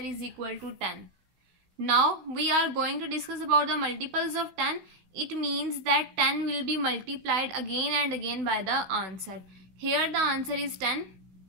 equal to 10. Now we are going to discuss about the multiples of 10. It means that 10 will be multiplied again and again by the answer. Here the answer is 10.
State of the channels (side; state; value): left; late; 16 ms